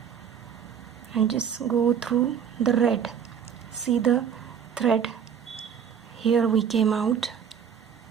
and just go through the red. See the thread here, we came out.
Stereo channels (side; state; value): left; quieter; 7.9 dB